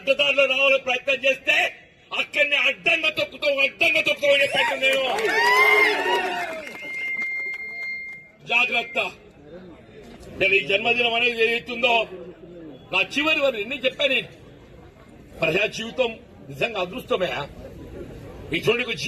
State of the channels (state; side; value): identical; both; correlation 1.00